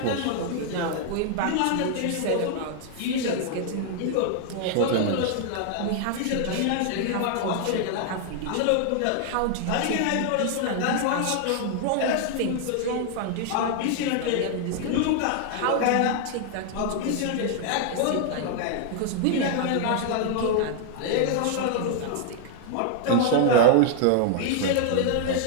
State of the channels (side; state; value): both; different; correlation 0.00